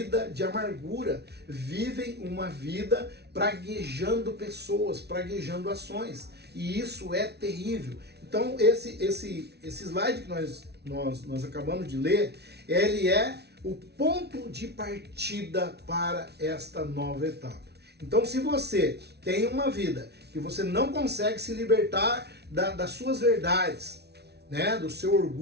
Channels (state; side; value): late; left; 0.49 ms